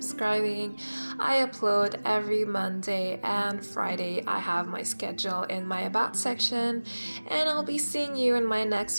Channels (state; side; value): inverted; both; correlation -1.00